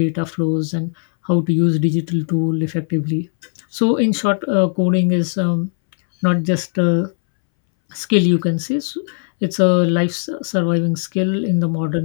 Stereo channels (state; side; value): silent; right; 65 dB below the other